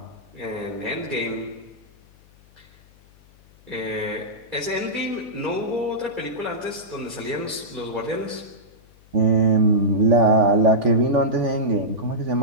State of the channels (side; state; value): left; noise; hum, 27 dB below the sound